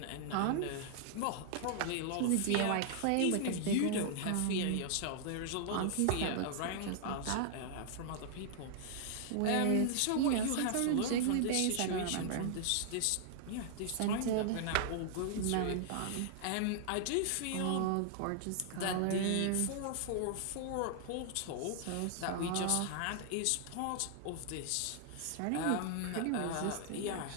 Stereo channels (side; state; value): both; different; correlation -0.01